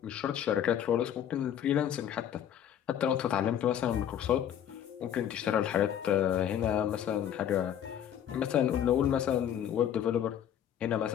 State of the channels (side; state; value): right; quieter; 9.9 dB